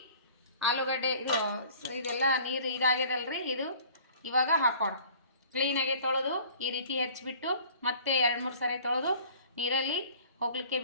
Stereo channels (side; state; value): both; inverted; correlation -0.50